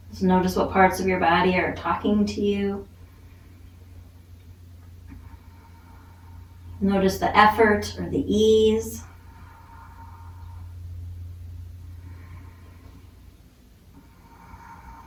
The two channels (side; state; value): both; identical; correlation 1.00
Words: Just notice what parts of your body are talking to you. Notice the effort or the ease.